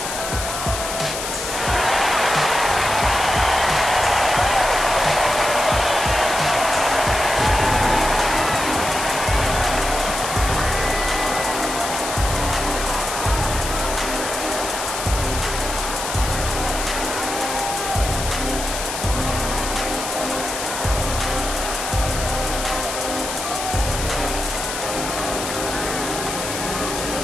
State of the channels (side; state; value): left; noise; hiss, 5 dB below the sound